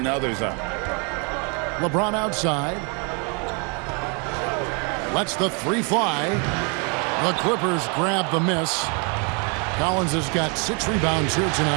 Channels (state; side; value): quieter; left; 34.5 dB